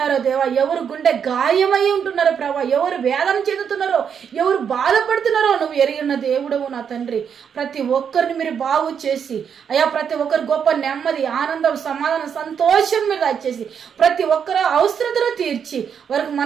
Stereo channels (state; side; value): quieter; left; 7.5 dB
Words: దేవా, ఎవరు గుండె గాయమై ఉంటున్నారో ప్రభా, ఎవరు వేదన చెందుతున్నారో, ఎవరు బాధపడుతున్నారో నువ్వు ఎరిగిన దేవుడవు నా తండ్రి. ప్రతి ఒక్కరిని మీరు బాగు చేసి అయ్యా ప్రతి ఒక్కరు గొప్ప నెమ్మది, ఆనందం, సమాధానం, సంతోషం మీరు దయచేసి ప్రతి ఒక్కరు అవసరతలు తీర్చి వారికి